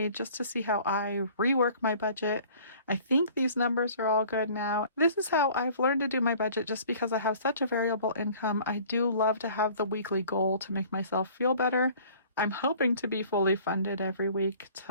just to see how I rework my budget. I think these numbers are all good now. This is how I've learned to do my budget just because I have such a variable income. I do love to have the weekly goal to make myself feel better. I'm hoping to be fully funded every week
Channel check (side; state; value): both; inverted; correlation -0.50